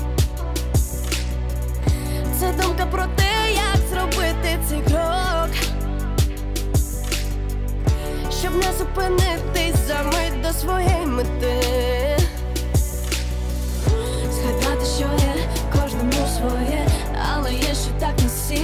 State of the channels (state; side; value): identical; both; correlation 1.00